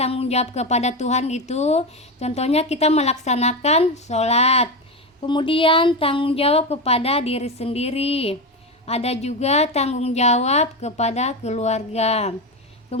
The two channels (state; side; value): normal; both; correlation 0.16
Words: jawab kepada Tuhan itu contohnya kita melaksanakan sholat. Kemudian tanggung jawab kepada diri sendiri. Ada juga tanggung jawab kepada keluarga.